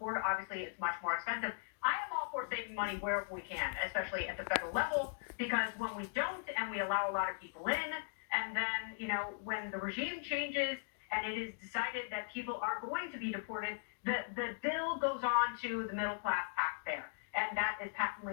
obviously it's much more expensive. I am all for saving money wherever we can, especially at the federal level, because when we don't and we allow a lot of people in, and then, when the regime changes and it is decided that people are going to be deported, the bill goes on to the middle class taxpayer, and that is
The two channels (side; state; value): right; silent; digital silence